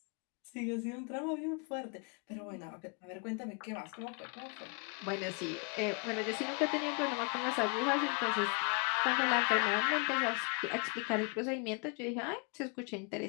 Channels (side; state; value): right; quieter; 35.7 dB